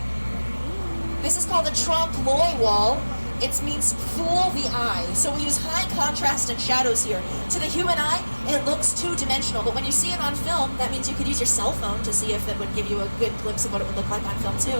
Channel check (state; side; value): inverted; both; correlation -1.00